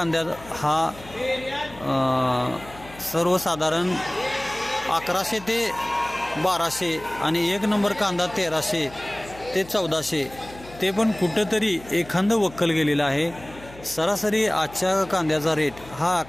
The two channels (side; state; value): left; noise; hum, 19 dB below the sound